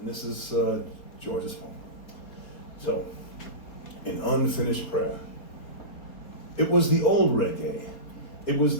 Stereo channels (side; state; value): right; late; 4.3 ms